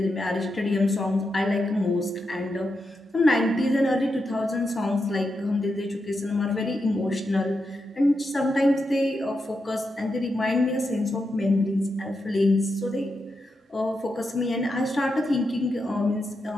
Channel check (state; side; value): normal; both; correlation 0.86